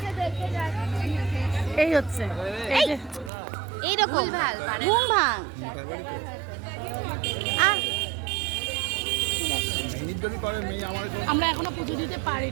এই হচ্ছে এইরকম ঘুম ভাঙ। আমরা এখনো পুজো দিতে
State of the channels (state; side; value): drops out; left; at 3.3 s